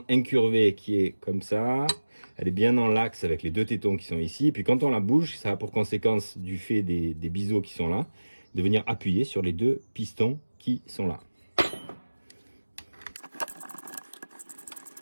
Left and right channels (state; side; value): inverted; both; correlation -1.00